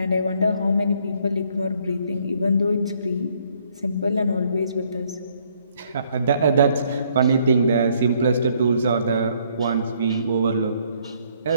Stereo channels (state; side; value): inverted; both; correlation -0.67